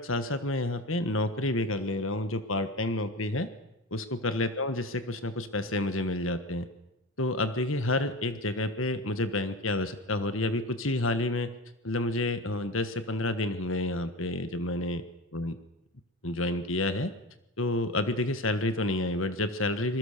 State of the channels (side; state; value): both; normal; correlation 0.28